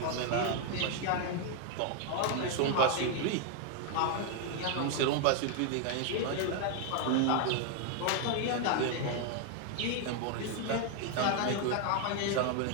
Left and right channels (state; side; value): different; both; correlation 0.00